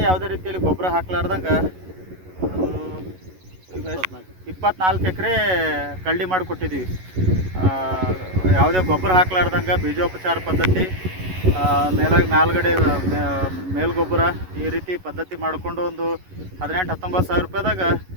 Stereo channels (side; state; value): left; late; 11 ms